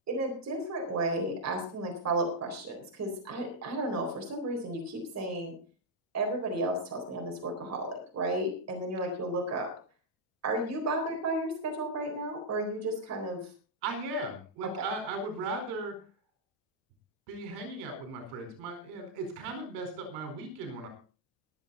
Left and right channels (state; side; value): normal; both; correlation -0.05